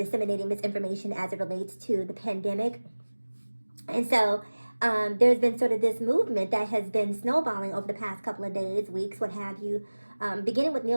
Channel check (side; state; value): both; inverted; correlation -1.00